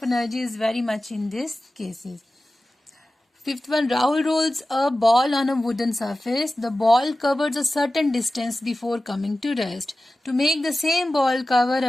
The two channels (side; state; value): both; normal; correlation 0.95